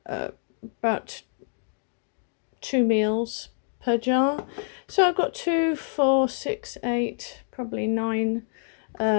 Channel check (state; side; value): silent; right; digital silence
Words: about 2 meals per jar. So I've got 2, 4, 6, 8, probably 9